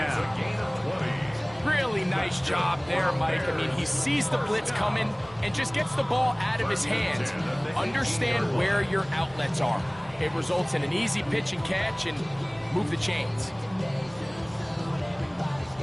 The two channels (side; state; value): left; noise; hum, 26 dB below the sound